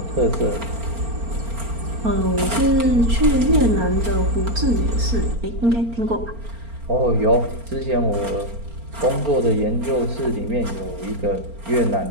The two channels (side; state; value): left; late; 4.3 ms